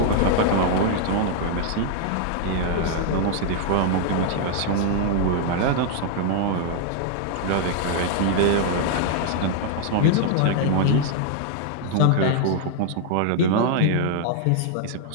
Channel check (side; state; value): both; different; correlation -0.01